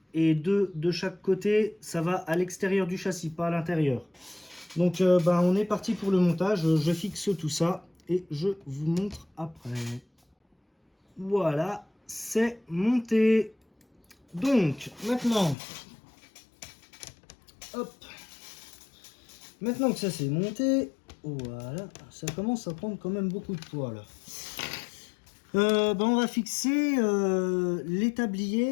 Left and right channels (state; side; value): drops out; right; at 15.6 s